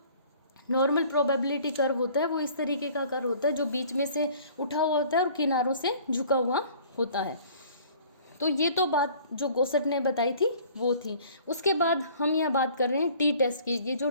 नॉर्मल प्रोबेबिलिटी कर्व होता है वो इस तरीके का कर्व होता है जो बीच में से उठा हुआ होता है और किनारों से झुका हुआ होता है। तो ये तो बात जो गोसेट ने बताई थी वो थी। उसके बाद हम यहाँ बात कर रहे हैं टी टेस्ट की। ये जो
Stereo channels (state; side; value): inverted; both; correlation -0.52